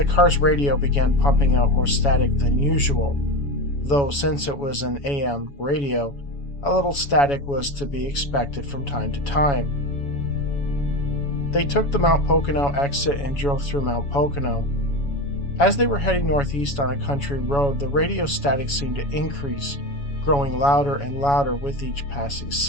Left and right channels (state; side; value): late; right; 7.1 ms